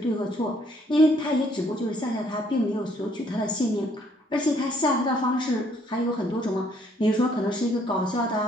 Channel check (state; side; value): normal; both; correlation 0.66